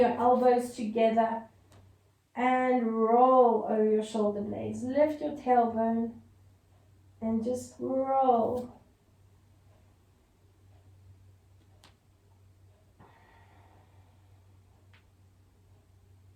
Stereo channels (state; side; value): identical; both; correlation 1.00